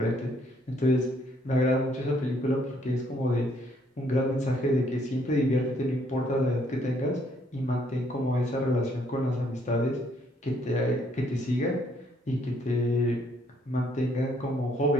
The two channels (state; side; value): normal; both; correlation 0.67